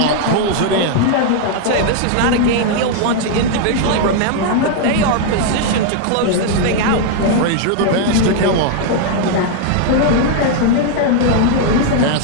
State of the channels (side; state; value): both; different; correlation 0.00